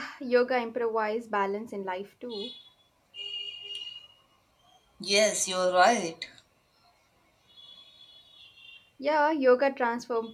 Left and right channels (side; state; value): both; identical; correlation 1.00